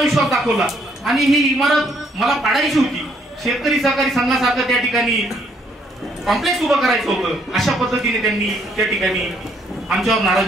विश्वास दाखवला आणि ही इमारत मला पाडायची होती. शेतकरी सहकारी संघासारखं त्या ठिकाणी कॉम्प्लेक्स उभं करायचं होतं. अशा पद्धतीने त्यांनी त्या ठिकाणी आमच्यावर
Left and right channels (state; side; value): normal; both; correlation 0.69